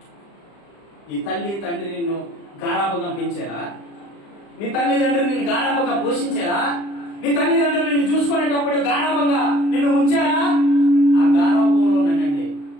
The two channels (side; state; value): right; late; 35 ms